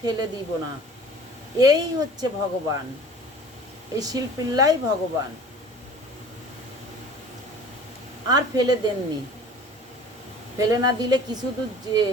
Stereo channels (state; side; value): normal; both; correlation 0.44